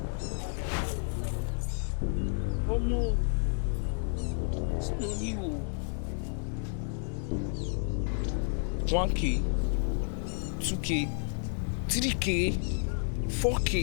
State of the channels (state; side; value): silent; right; 57 dB below the other